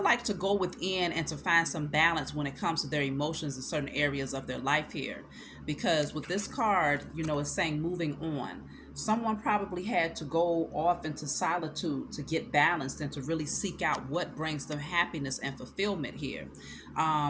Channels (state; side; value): identical; both; correlation 1.00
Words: like, to go within and to find some balance when it comes to their emotions in certain areas of their life here. Because with this card, it's saying moving on. Someone probably had to go off into solitude to get balanced and to really seek out what brings them happiness and fulfillment here.